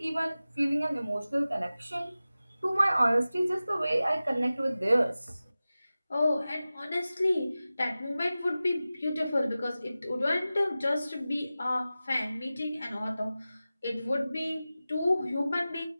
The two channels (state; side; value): inverted; both; correlation -0.96